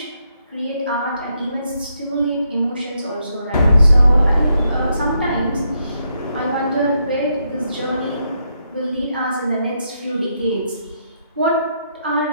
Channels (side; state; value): both; inverted; correlation -0.78